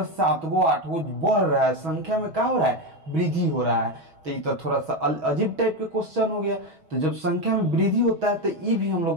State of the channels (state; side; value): late; left; 6.2 ms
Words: 7 गो 8 गो बढ़ रहा है, संख्या में क्या हो रहा है? वृद्धि हो रहा है। तो ये तो थोड़ा सा अजीब टाइप के क्वेश्चन हो गया। तो जब संख्या में वृद्धि होता है तो ये भी हम